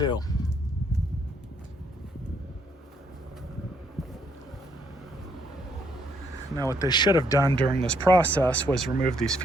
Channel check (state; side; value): normal; both; correlation 0.70